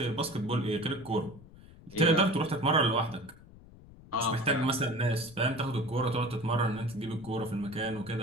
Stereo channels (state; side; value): noise; left; rumble, 20 dB below the sound